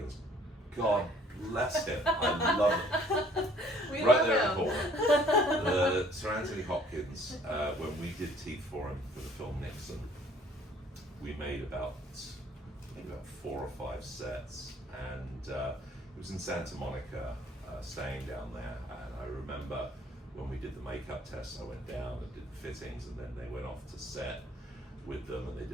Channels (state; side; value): normal; both; correlation 0.58